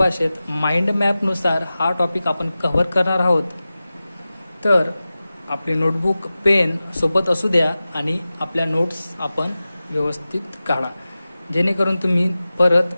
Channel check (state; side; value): inverted; both; correlation -0.96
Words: माइंड मॅपनुसार हा टॉपिक आपण कव्हर करणार आहोत. तर आपली नोटबुक पेन सोबत असू द्या आणि आपल्या नोट्स आपण व्यवस्थित काढा, जेणेकरून तुम्ही